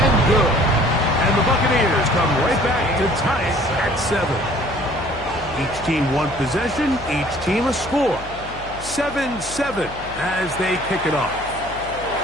good. And the Buccaneers come right back to tie it at 7. Each team one possession, each team a score. 7-7 as they kick it off.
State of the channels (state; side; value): noise; left; hum, 15 dB below the sound